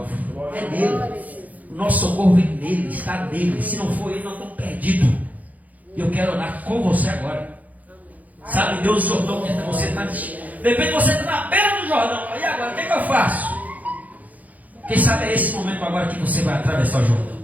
É nele. O nosso socorro vem nele, está nele. Se não for ele, nós estamos perdidos. E eu quero orar com você agora. Sabe, Deus, o Jordão que você está. De repente você está na beira do Jordão. E agora, o que eu faço? Quem sabe é esse momento agora que você vai atravessar o Jordão.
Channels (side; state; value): left; late; 0.078 ms